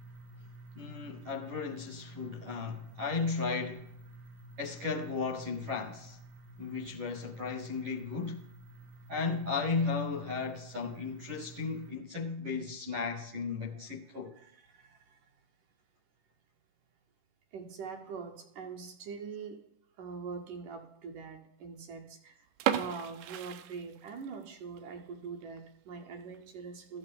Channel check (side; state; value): left; late; 10 ms